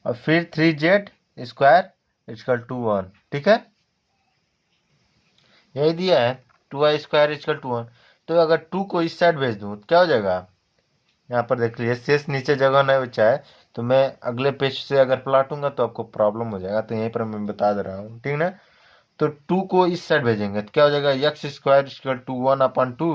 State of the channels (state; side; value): identical; both; correlation 1.00